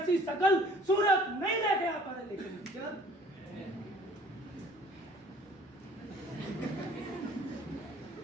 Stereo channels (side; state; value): both; normal; correlation 0.53